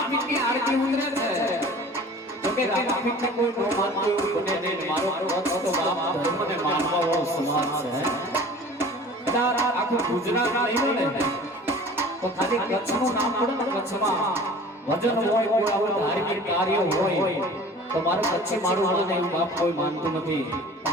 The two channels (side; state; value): both; normal; correlation 0.44